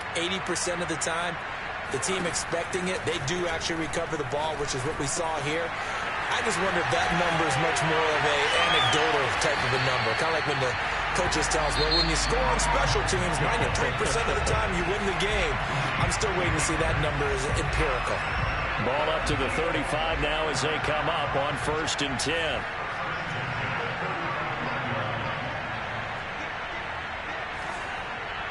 80% of the time, the team expecting it, they do actually recover the ball, which is what we saw here. I just wonder if that number is much more of a anecdotal type of a number. Kind of like when the coaches tell us, well, when you score on special teams, 93% of the time you win the game. I'm still waiting to see that number is empirical. Ball up to the 35 now as they come up on 1st and 10.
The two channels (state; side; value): identical; both; correlation 1.00